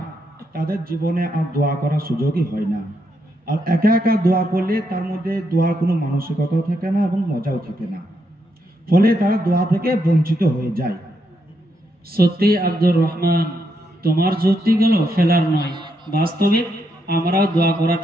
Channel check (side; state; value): both; normal; correlation 0.79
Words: তাদের জীবনে আর দোয়া করার সুযোগই হয় না। আর একা একা দোয়া করলে তার মধ্যে দোয়ার কোনো মানসিকতাও থাকে না এবং মজাও থাকে না, ফলে তারা দোয়া থেকে বঞ্চিত হয়ে যায়। সত্যি আব্দুর রহমান, তোমার যুক্তিগুলো ফেলার নয়, বাস্তবিক আমরাও দোয়া করা